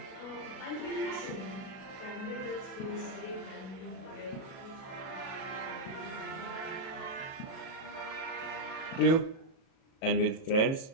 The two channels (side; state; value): right; late; 37 ms